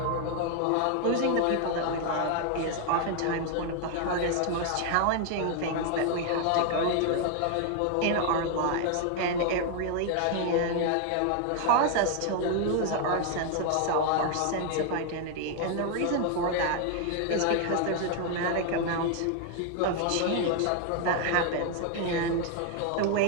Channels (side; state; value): both; different; correlation 0.00